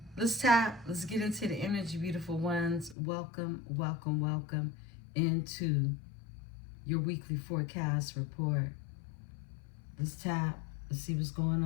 Let's tap. Let's get into the energy, beautiful ones. Welcome, welcome, welcome into your weekly forecast report. Let's tap. Let's see what's going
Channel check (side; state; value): right; drops out; at 3.0 s